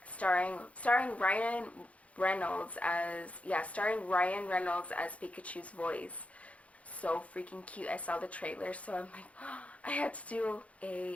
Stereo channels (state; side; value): late; right; 0.065 ms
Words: starring Ryan Reynolds as Pikachu's voice. So freaking cute. I saw the trailer, so I'm like, oh, I had to do